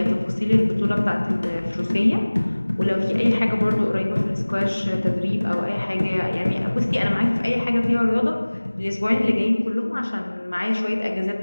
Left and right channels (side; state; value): both; inverted; correlation -1.00